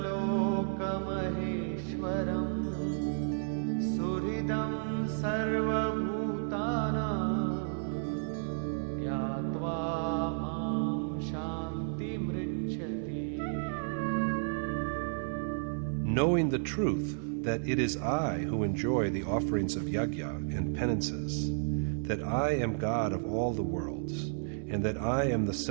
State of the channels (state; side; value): silent; left; 56 dB below the other